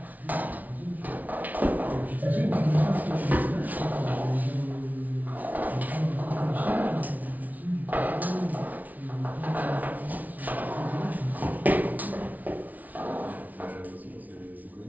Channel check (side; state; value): left; late; 0.075 ms